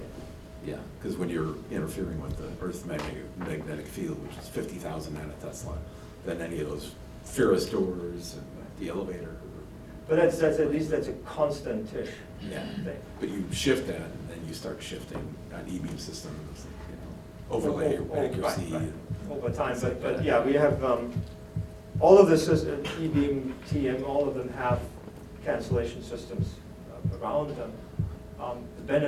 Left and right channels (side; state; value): both; identical; correlation 1.00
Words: Yeah, because when you're interfering with the Earth's magnetic field, which is 50,000 nanotesla, then any of those Ferris doors and the elevator. But that's at least that's a constant-ish Yeah. thing. But you shift that, and then you start shifting on E-beam systems, overlay accuracy. Right. Over time, but yeah, we have all of the systems, E-beam, TM, all of them have cancellation systems around them. The